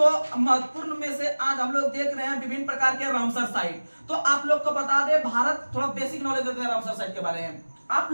महत्वपूर्ण में से आज हम लोग देख रहे हैं विभिन्न प्रकार के रामसर साइट। तो आप लोग को बता दें, भारत थोड़ा बेसिक नॉलेज देते हैं रामसर साइट के बारे में। आप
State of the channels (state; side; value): inverted; both; correlation -1.00